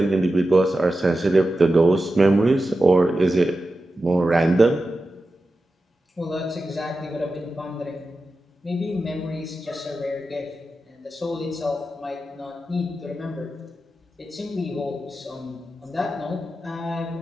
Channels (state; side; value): normal; both; correlation 0.92